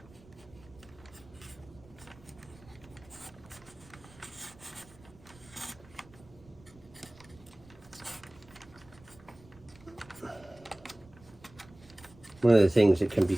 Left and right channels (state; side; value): noise; right; rumble, 23 dB below the sound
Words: One of the things that can be